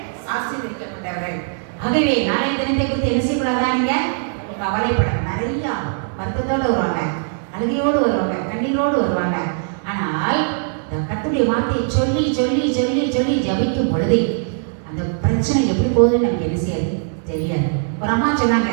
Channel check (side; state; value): left; silent; 63 dB below the other